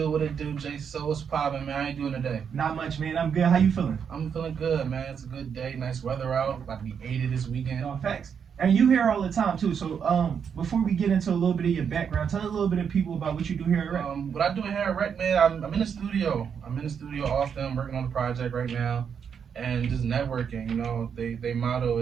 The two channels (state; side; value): quieter; left; 7.2 dB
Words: J So? What's poppin', man? How you doing today? Not much, man. I'm good. How you feeling? I'm feeling good, man. It's a good day, nice weather out. About to be 80 this weekend. No, facts. And you here all the time too. So before we get into a little bit of your background, tell a little bit of people about what you do here at Rec. What I do here at Rec, man, I'm in the studio. I'm in the studio often. I'm working on a project right now. And just networking, you know, they motto